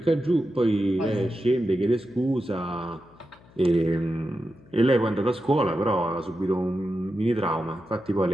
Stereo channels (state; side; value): noise; left; hum, 26 dB below the sound